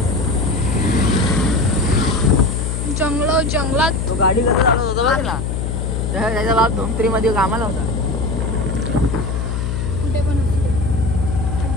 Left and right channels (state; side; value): noise; left; hum, 2 dB below the sound